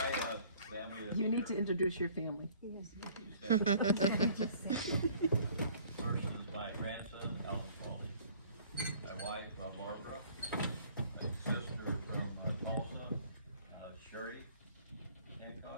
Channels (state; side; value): inverted; both; correlation -0.54